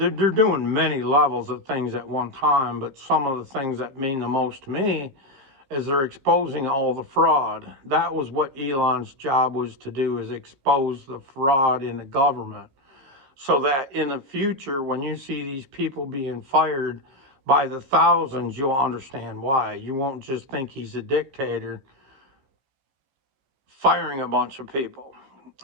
many levels of things at one time, but some of the things that mean the most to me is they're exposing all the fraud. That was what Elon's job was to do, is expose the fraud in the government, so that in the future, when you see these people being fired by the thousands, you'll understand why. You won't just think he's a dictator firing a bunch of people.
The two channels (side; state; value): left; late; 15 ms